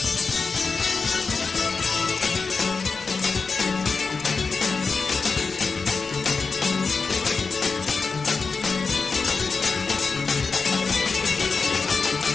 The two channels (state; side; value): quieter; right; 4.6 dB